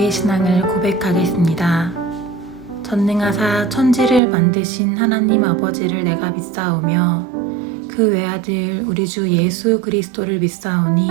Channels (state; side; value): drops out; left; at 4.2 s